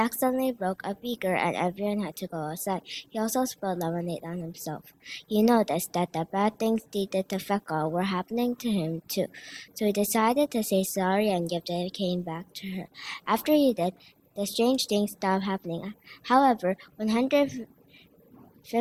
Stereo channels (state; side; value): identical; both; correlation 1.00